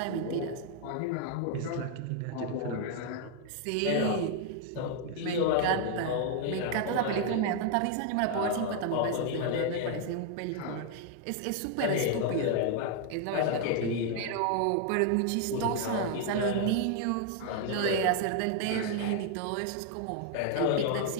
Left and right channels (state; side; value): different; both; correlation 0.00